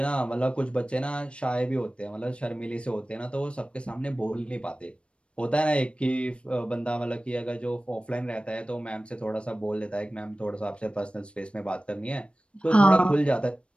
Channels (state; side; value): late; right; 0.059 ms